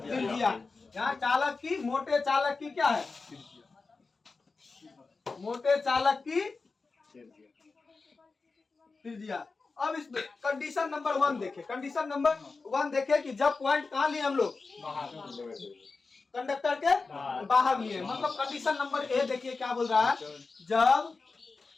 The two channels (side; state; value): right; quieter; 4.1 dB